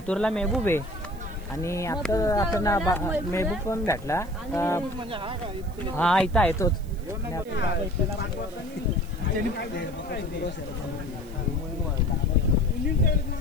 मेहबूब आहे. आणि आता आपण मेहबूब पण भेटला. हा इथं आहे तोच. उभं आहे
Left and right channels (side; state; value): right; noise; hiss, 25 dB below the sound